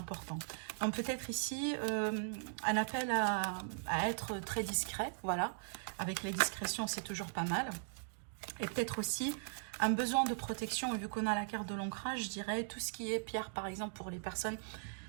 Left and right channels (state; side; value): silent; left; digital silence